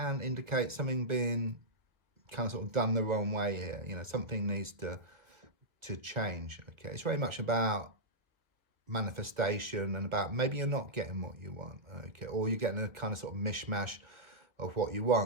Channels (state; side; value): late; left; 1.2 ms